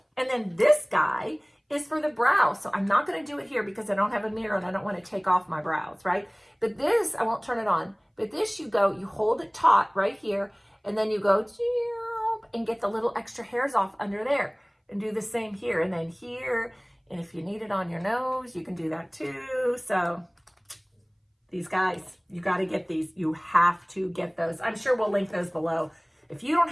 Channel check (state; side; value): identical; both; correlation 1.00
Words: And then this guy is for the brow. So I'm not gonna do it here because I don't have a mirror and I don't wanna take off my brows, right? But this, I won't turn it on, but this you hold it taut right here, and then you go and get the little extra hairs off under there, and do the same here, and then here, and if you need it on your nose, you can do that too. So these guys, you got to get these. You have to get those. I'm sure we'll link those below. If you don't